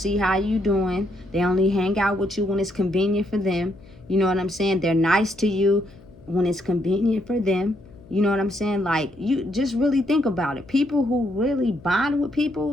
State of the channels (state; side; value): noise; left; hum, 23 dB below the sound